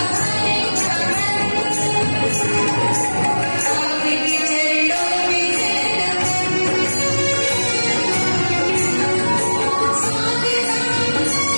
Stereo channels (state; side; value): inverted; both; correlation -1.00